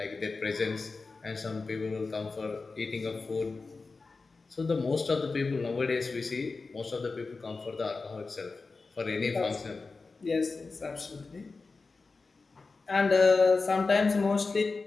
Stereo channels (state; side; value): quieter; right; 4.0 dB